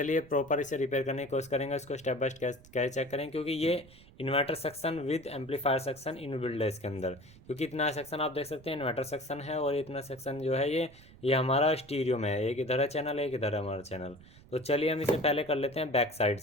प्रॉपर इसे रिपेयर करने की कोशिश करेंगे। इसको स्टेप बाय स्टेप कैसे चेक करें, क्योंकि ये inverter section with amplifier section in build है इसके अंदर। क्योंकि इतना सेक्शन आप देख सकते हैं इन्वर्टर सेक्शन है, और इतना सेक्शन जो है ये हमारा स्टीरियो में है। एक इधर है चैनल, एक इधर है हमारा चैनल। तो चलिए हम इसे पहले कर लेते हैं बैक साइड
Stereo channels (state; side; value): noise; right; rumble, 22 dB below the sound